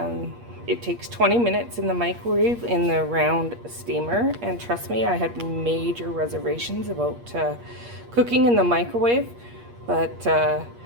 it takes 20 minutes in the microwave in the round steamer. And trust me, I had major reservations about cooking in the microwave, but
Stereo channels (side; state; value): left; late; 8.5 ms